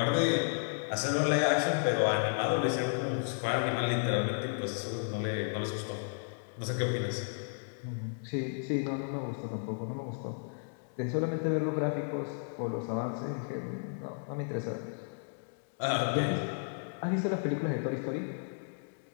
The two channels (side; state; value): right; silent; digital silence